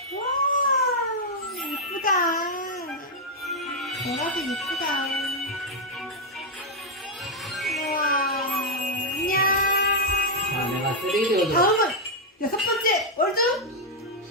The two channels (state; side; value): normal; both; correlation -0.02